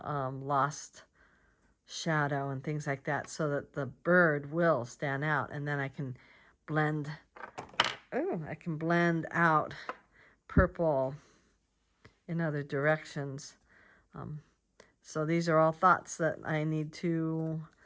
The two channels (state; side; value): identical; both; correlation 1.00